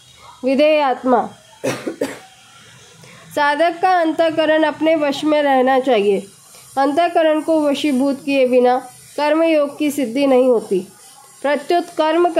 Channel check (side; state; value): both; identical; correlation 1.00